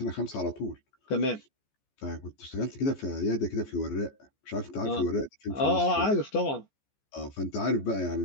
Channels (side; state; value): right; late; 14 ms